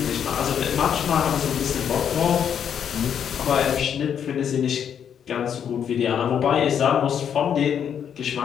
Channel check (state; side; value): quieter; right; 8.4 dB